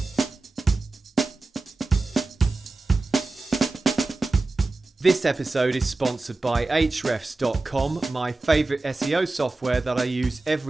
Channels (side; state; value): left; quieter; 3.3 dB